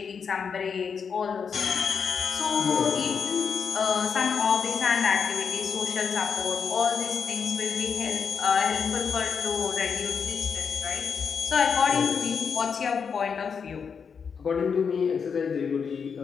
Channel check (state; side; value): quieter; right; 6.3 dB